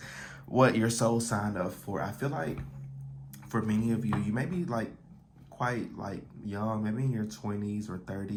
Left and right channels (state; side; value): identical; both; correlation 1.00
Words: what your soul signed up for. I feel like for many of you, you may be quite young, maybe in your 20s or